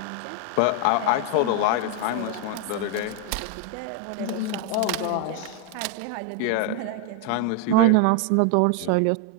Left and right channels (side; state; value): both; different; correlation 0.01